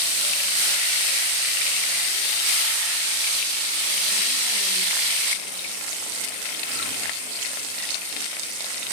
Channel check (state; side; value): late; left; 38 ms